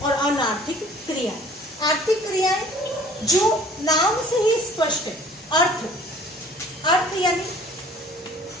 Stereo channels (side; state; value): both; normal; correlation 0.51